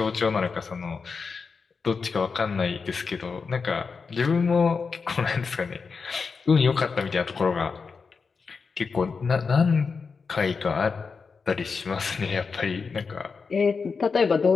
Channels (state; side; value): quieter; right; 5.1 dB